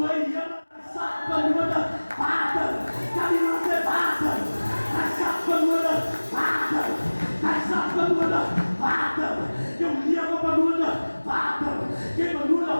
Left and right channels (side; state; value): both; inverted; correlation -1.00